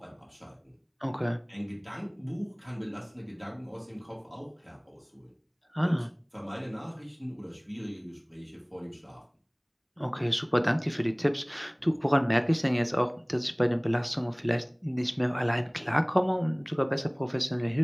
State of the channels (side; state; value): both; identical; correlation 1.00